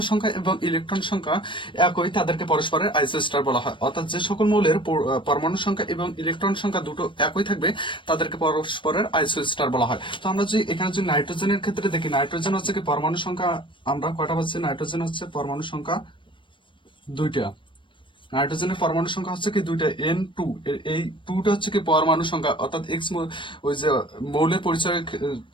সংখ্যা এবং ইলেকট্রন সংখ্যা একই তাদেরকে পরস্পরের আইসো স্টার বলা হয়। অর্থাৎ যে সকল মৌলের পরমাণু সংখ্যা এবং ইলেকট্রন সংখ্যা দুটো একই থাকবে তাদেরকে পরস্পরের আইসো স্টার বলা হয়। তো আমরা যদি এখানে যদি নাইট্রোজেনের ক্ষেত্রে দেখি, নাইট্রোজেন হচ্ছে কি পরমাণু সংখ্যা আমরা কয়টা পাচ্ছি, নাইট্রোজেন হচ্ছে পরমাণু সংখ্যা দুইটা। নাইট্রোজেনের পরমাণু সংখ্যা হচ্ছে কি দুইটা, N2। এই টুটা হচ্ছে কি পরমাণু সংখ্যা, অর্থাৎ এক্স ওই যে মৌলের পরিচয়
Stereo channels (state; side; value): late; right; 0.24 ms